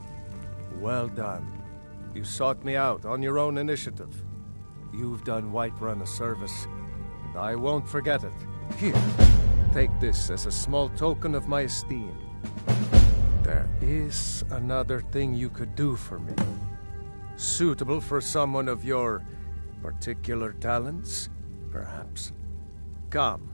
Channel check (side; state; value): both; inverted; correlation -1.00